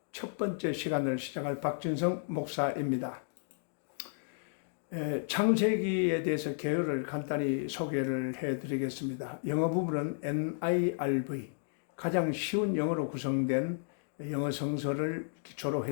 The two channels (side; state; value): right; silent; digital silence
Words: 첫 번째 시간을 시작할 박진성 목사입니다. 창세기에 대해서 개요를 간단히 소개를 해드리겠습니다. 영어 부분은 NIRV, 가장 쉬운 영어로 구성된 영어 성서를 기초로